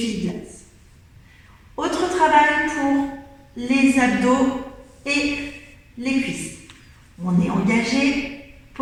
Autre travail pour les abdos et les cuisses. On est engagé.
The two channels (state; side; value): identical; both; correlation 1.00